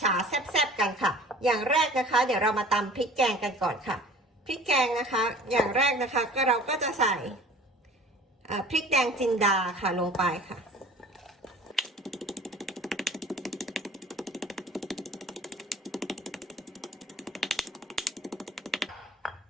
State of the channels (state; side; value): normal; both; correlation 0.46